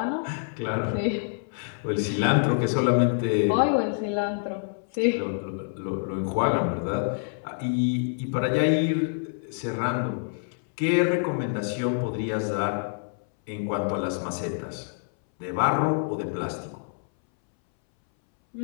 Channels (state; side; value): silent; right; 60 dB below the other